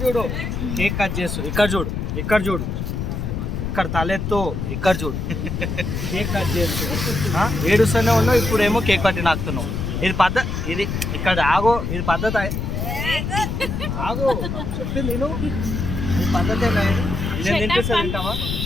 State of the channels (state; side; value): noise; left; rumble, 3 dB below the sound